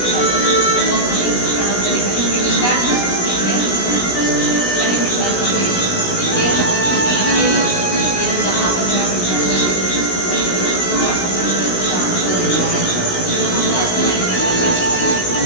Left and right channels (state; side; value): late; right; 16 ms